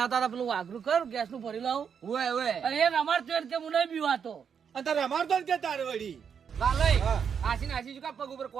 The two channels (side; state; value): left; quieter; 7.2 dB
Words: હતા પેલું વાઘરું કર ગેસ નું ભરી લાવું ઓય ઓય અને એ અમાર તો કે હું નહીં બીવાતો અને તારે અમારતો જ કે તારે વળી લાલે હા. આશી નાસી શું કા પગ ઉપર